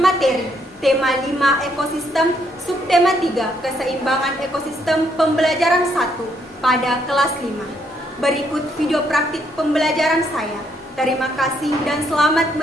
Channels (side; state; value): both; normal; correlation 0.72